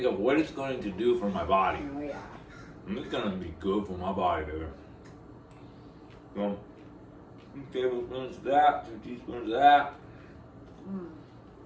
of what it's going to do for my body. Oh, yeah. And it's going to be good for my body, baby. So, 2 tablespoons of that, 2 teaspoons of that.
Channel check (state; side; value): identical; both; correlation 1.00